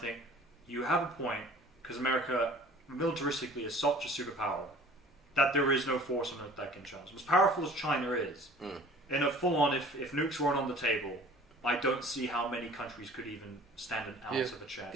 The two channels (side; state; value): both; normal; correlation 0.48